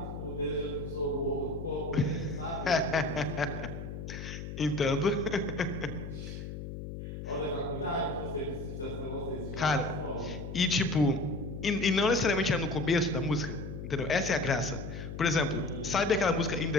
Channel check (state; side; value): noise; left; hum, 8 dB below the sound